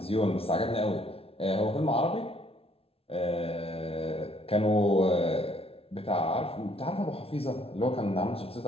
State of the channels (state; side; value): late; right; 0.27 ms